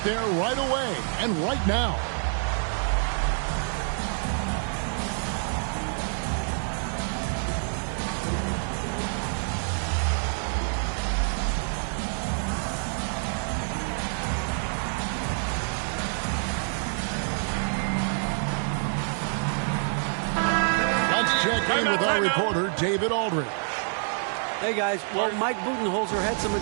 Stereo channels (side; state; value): left; silent; 60 dB below the other